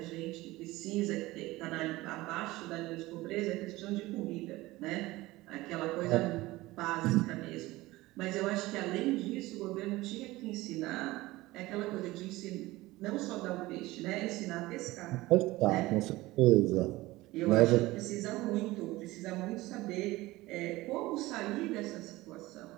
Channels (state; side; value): quieter; left; 19.1 dB